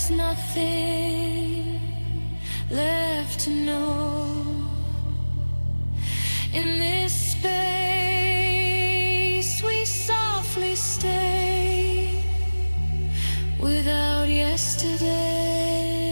nothing left to know. In this space we softly stay without yesterday.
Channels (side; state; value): both; inverted; correlation -1.00